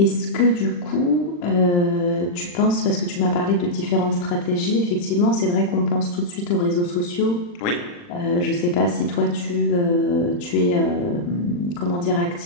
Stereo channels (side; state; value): right; late; 40 ms